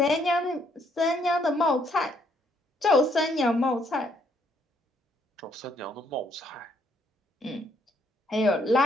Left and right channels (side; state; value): both; normal; correlation 0.70